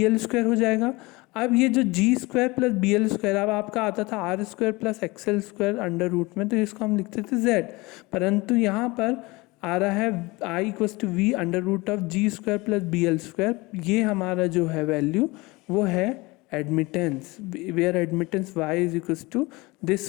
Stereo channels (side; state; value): right; quieter; 23.3 dB